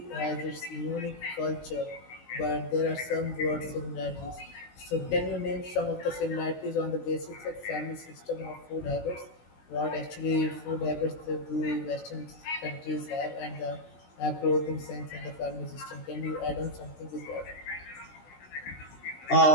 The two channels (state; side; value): late; right; 16 ms